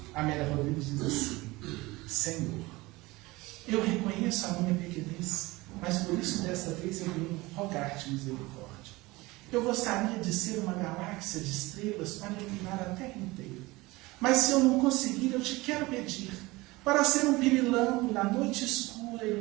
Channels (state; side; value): quieter; left; 21.4 dB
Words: Amélia Rodrigues diz assim: Senhor, eu reconheço a minha pequenez, mas por isso desta vez eu venho rogar-te misericórdia. Eu gostaria de ser uma galáxia de estrelas para iluminar a Terra inteira. Mas se eu não conseguir, eu te quero pedir para ser um pirilampo na noite escura,